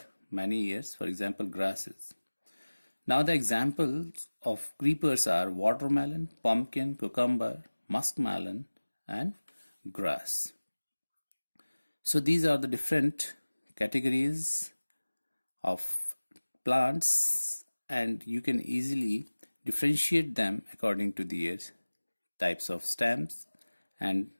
many years, for example grasses. Now the examples of creepers are watermelon, pumpkin, cucumber, muskmelon and grass. So these are the different categories of plants and you can easily differentiate them according to their types of stems and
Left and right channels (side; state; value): both; inverted; correlation -1.00